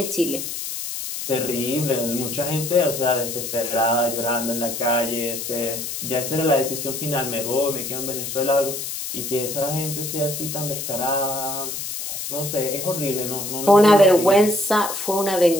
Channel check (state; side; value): noise; left; hiss, 5 dB below the sound